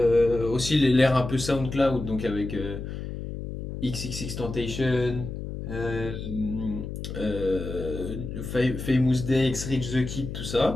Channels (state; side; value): noise; left; hum, 7 dB below the sound